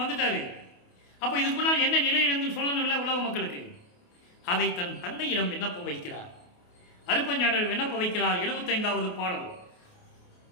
வந்துட்டாரு. அப்போ இதுக்கு முன்னால் என்ன நிலையிலிருந்து சொல்லணும் இல்லை உலக மக்களுக்கு. அதை தன் தந்தையிடம் விண்ணப்பம் வைக்கிறார். அருப்பஞ்சாண்டர் விண்ணப்பம் வைக்கிறார். 75வது பாடல்.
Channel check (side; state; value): right; late; 28 ms